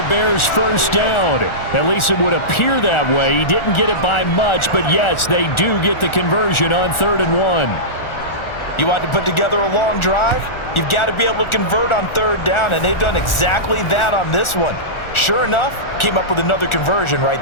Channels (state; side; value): late; right; 1.4 ms